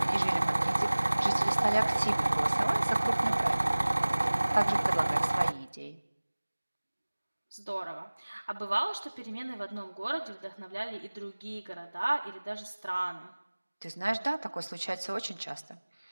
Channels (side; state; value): both; inverted; correlation -1.00